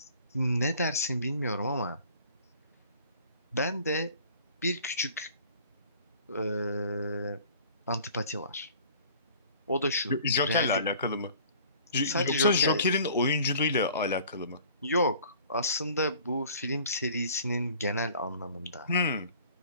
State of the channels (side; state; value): both; inverted; correlation -0.50